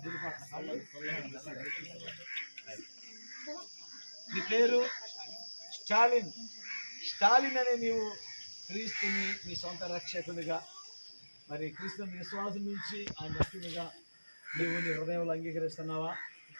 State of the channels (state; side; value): inverted; both; correlation -1.00